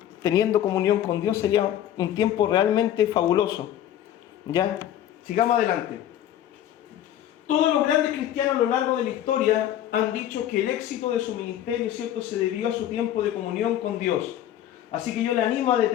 teniendo comunión con Dios, sería un tiempo realmente fabuloso. ¿Ya? Sigamos adelante. Todos los grandes cristianos a lo largo de la historia han dicho que el éxito de su ministerio, ¿cierto?, se debió a su tiempo de comunión con Dios. Así que yo le animo a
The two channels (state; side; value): quieter; right; 11.4 dB